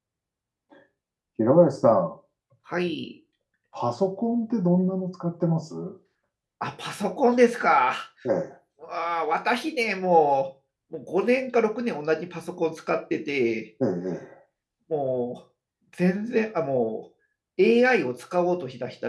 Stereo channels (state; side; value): identical; both; correlation 1.00